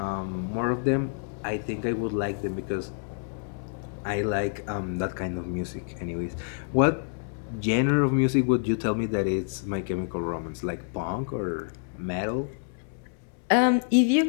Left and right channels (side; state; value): right; silent; digital silence